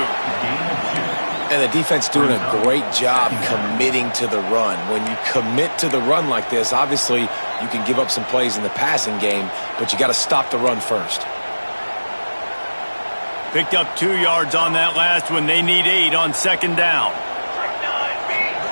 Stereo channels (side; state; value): both; inverted; correlation -1.00